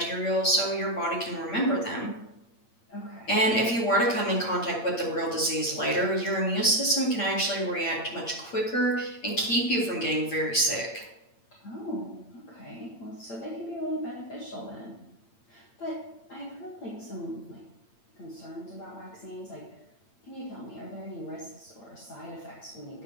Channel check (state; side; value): late; right; 8.8 ms